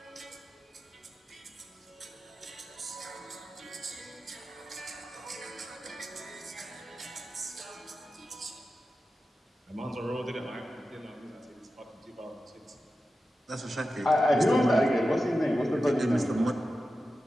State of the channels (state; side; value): normal; both; correlation 0.92